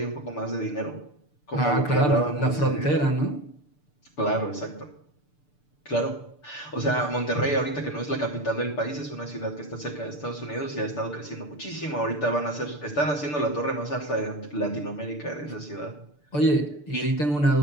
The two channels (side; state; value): right; late; 6.8 ms